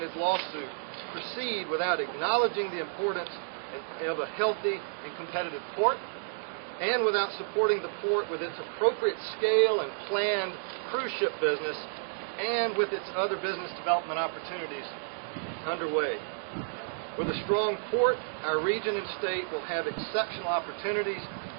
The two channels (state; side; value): silent; left; digital silence